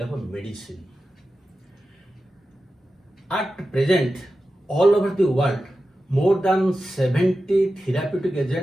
of medicine. At present, all over the world, more than 70 therapeutic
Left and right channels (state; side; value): normal; both; correlation 0.93